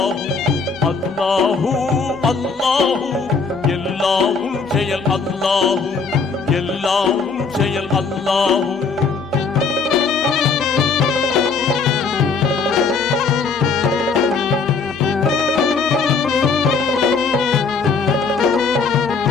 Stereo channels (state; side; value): quieter; right; 4.9 dB